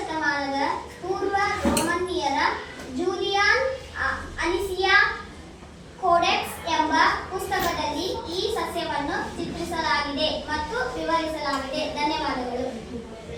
ಪೂರ್ವ ರೋಮನ್ನೀಯರ ಜೂಲಿಯಾನ್ ಅನಿಸಿಯಾ ಕೋಡೆಕ್ಸ್ ಎಂಬ ಪುಸ್ತಕದಲ್ಲಿ ಈ ಸಸ್ಯವನ್ನು ಚಿತ್ರಿಸಲಾಗಿದೆ ಮತ್ತು ವಿವರಿಸಲಾಗಿದೆ. ಧನ್ಯವಾದಗಳು.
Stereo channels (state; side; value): identical; both; correlation 1.00